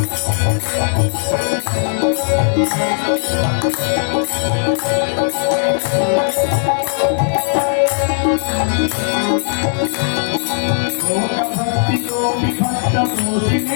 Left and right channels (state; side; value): silent; right; digital silence